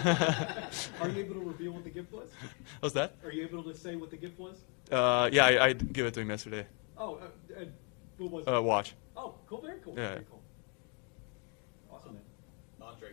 Are you able to reveal what the gift was? What's that? Are you able to say what the gift was? Yeah, I give it to him yesterday. Oh, what was it? Watch. Oh, cool, very cool. Yeah. Very cool. Awesome, man.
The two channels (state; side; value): quieter; right; 36.4 dB